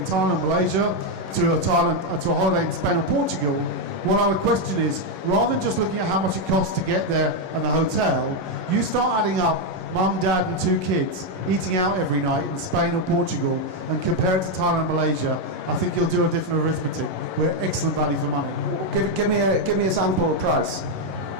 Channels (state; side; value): late; left; 11 ms